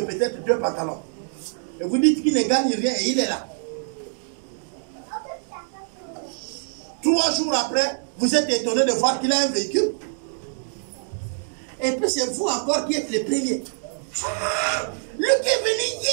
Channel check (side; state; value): left; silent; digital silence